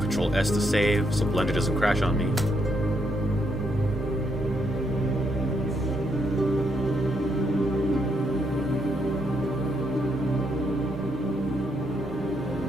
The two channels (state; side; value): normal; both; correlation 0.76